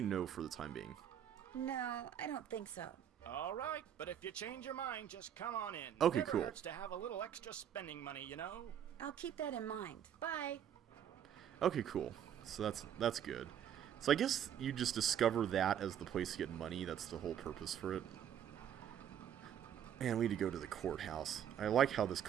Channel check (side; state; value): left; quieter; 9.5 dB